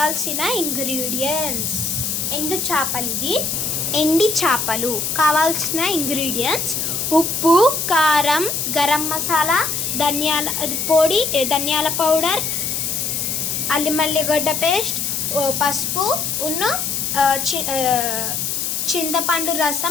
ఇంగ్రీడియంట్స్. ఎండు చేపలు, ఇది ఎండి చేపలు. కావాల్సిన ఇంగ్రీడియంట్స్: ఉప్పు, కారం, గరం మసాలా, ధనియాల పొడి, ధనియాల పౌడర్, అల్లిమల్లిగడ్డ పేస్ట్, పసుపు, చింతపండు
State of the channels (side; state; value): left; noise; hiss, 1 dB below the sound